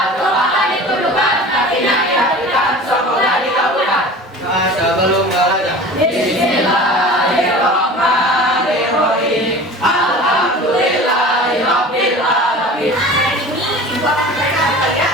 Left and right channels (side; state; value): both; normal; correlation 0.39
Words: tangan dituduhkan, kakinya dihadirkan, semoga dikabulkan. Doa sebelum belajar. Bismillahirrahmanirrahim. Alhamdulillahirabbil alamin. Hari ini Ibu akan membacakan ya.